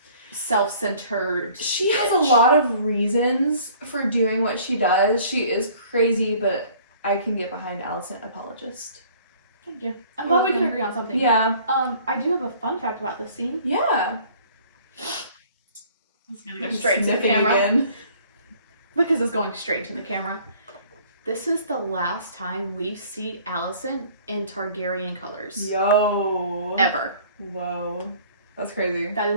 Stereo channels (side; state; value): both; inverted; correlation -0.53